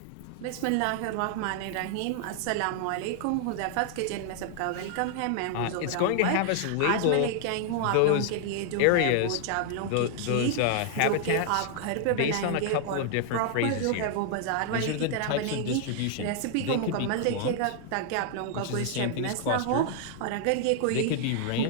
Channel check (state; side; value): different; both; correlation 0.00